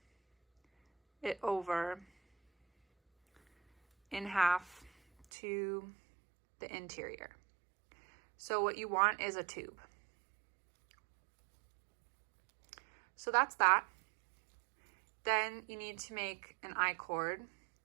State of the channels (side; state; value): left; drops out; at 5.2 s